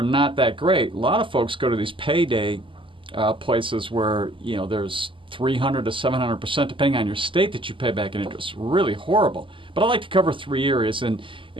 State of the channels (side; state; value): left; late; 0.25 ms